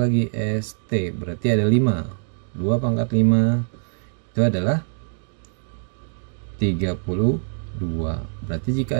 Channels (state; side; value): silent; left; 63 dB below the other